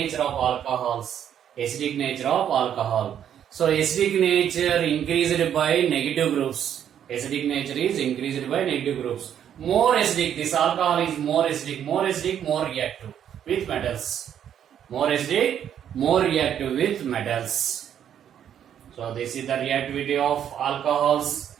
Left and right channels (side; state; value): left; quieter; 9.5 dB